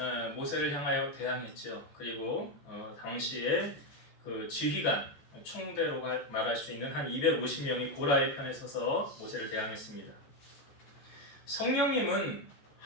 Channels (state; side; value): late; right; 14 ms